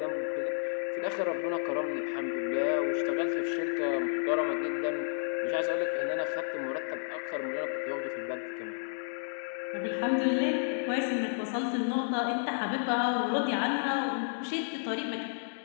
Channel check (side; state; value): right; silent; digital silence